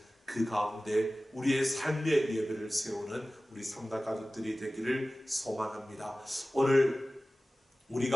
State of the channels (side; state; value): both; normal; correlation 0.97